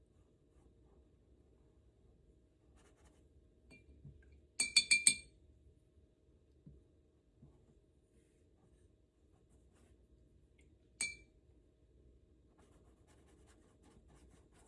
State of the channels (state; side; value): identical; both; correlation 1.00